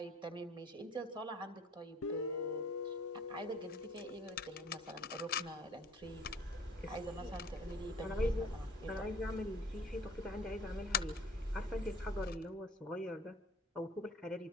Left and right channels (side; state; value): both; normal; correlation 0.52